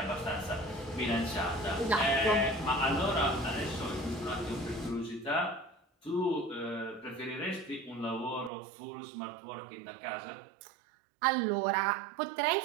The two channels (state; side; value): drops out; left; at 8.5 s